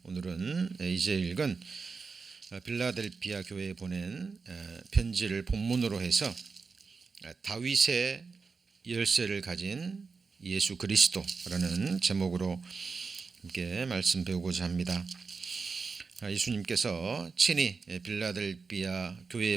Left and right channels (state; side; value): quieter; left; 4.7 dB